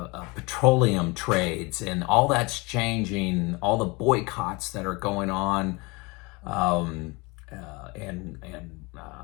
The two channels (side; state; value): right; quieter; 25.7 dB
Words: trades, and all that's changing. All the boycotts that are going on,